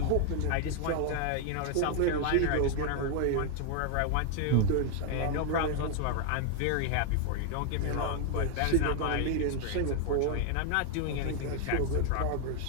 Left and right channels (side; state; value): both; different; correlation 0.00